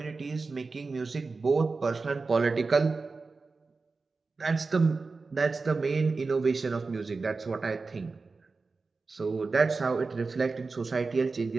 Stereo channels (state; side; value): quieter; left; 4.1 dB